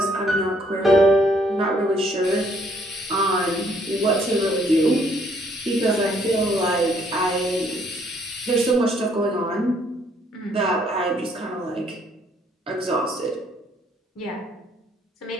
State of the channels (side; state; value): both; normal; correlation 0.66